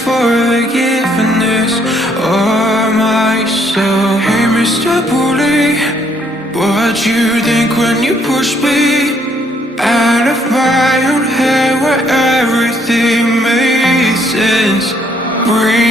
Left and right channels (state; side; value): normal; both; correlation 0.68